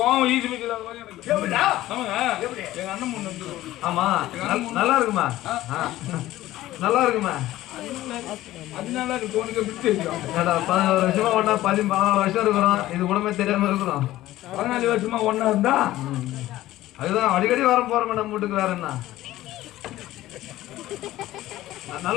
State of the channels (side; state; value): right; quieter; 15.4 dB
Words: ஈஸி வைக்கிறது மாதிரி எனக்கு. எப்படிடா? ஆமாங்க எங்க அண்ணன் பொண்ணு வந்து ஆமா நல்லா இருக்குமா? நல்லா இருக்குமா? அதனால அது உனக்கு விட்டு தெரியும். 14 வருஷமா ஒண்ணா 14 வருஷம் இருக்கிறோம். இது உடம்பே தெரியாம இருக்கிறோம். 14 வருஷமா ஒண்ணா இருந்தா அதுதான் அடிக்கடி வர போறோம் நம்ம வீட்டுக்கு. வேற என்ன